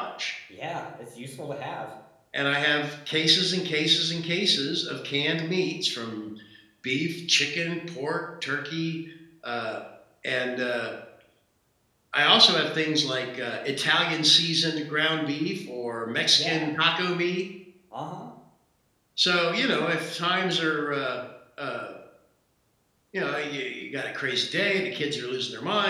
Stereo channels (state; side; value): identical; both; correlation 1.00